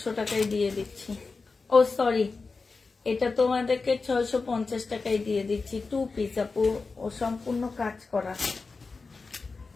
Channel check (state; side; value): quieter; right; 4.2 dB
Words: টাকায় দিয়ে দিচ্ছি। ও সরি, এটা তোমাদেরকে 650 টাকায় দিয়ে দিচ্ছি। 2 পিস আপু, ও সম্পূর্ণ কাজ করা।